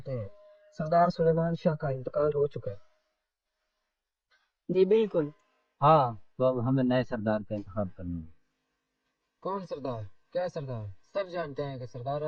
हैं सरदार सुलेमान शाह का इंतकाल हो चुका है। जी बिल्कुल। हाँ, तो अब हमें नए सरदार का इंतखाब करना है। कौन सरदार? क्या सरदार? सब जानते हैं कि सरदार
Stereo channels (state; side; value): identical; both; correlation 1.00